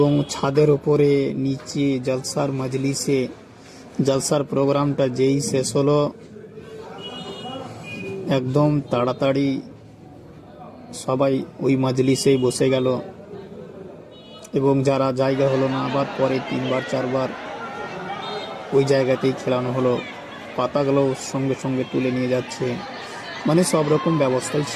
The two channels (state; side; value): identical; both; correlation 1.00